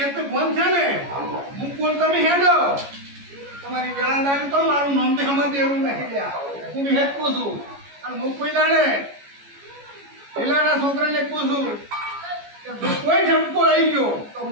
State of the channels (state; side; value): late; left; 14 ms